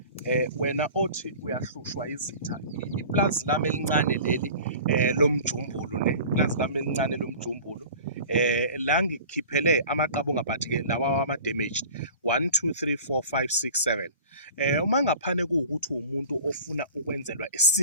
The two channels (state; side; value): inverted; both; correlation -0.41